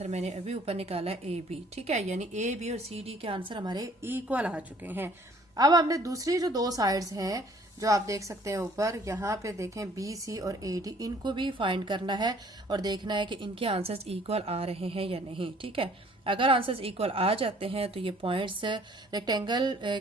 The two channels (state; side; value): normal; both; correlation 0.58